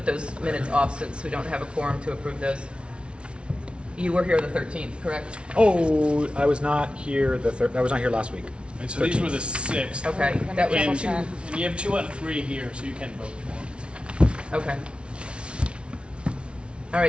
those minutes off since we don't have a quorum to approve those. You were here the 13th, correct? Oh, I was not here I was not here last week. And so these were the 6. Okay, that was And you have 2 out of 3 here, so you can vote. okay. All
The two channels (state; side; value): late; left; 0.058 ms